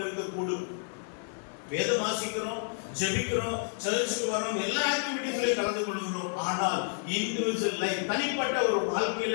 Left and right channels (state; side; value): silent; right; 56 dB below the other